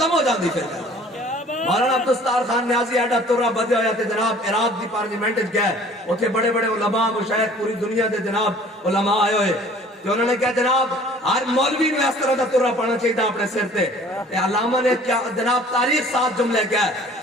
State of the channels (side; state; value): both; normal; correlation 0.51